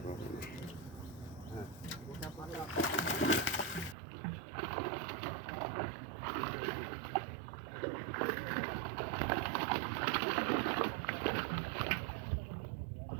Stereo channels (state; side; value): drops out; left; at 4.0 s